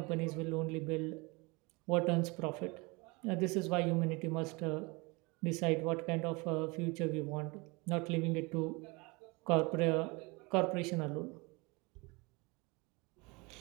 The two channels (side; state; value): left; quieter; 26.7 dB